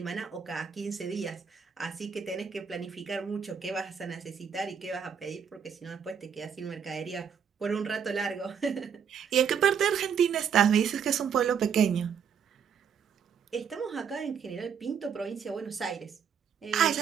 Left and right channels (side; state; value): left; quieter; 7.2 dB